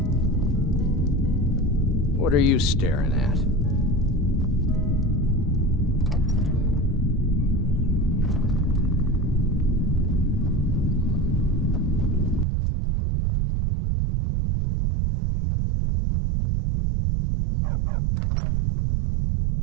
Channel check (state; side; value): drops out; left; at 12.5 s